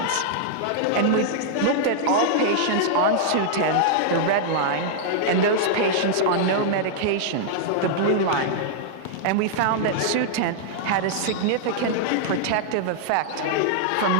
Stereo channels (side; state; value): both; different; correlation -0.01